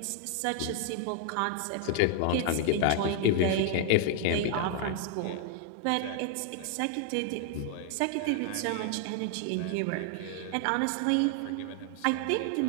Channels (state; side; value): different; both; correlation 0.00